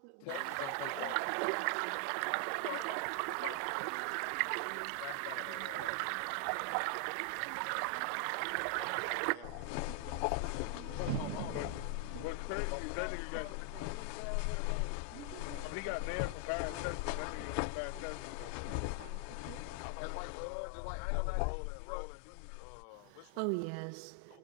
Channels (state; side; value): different; both; correlation 0.00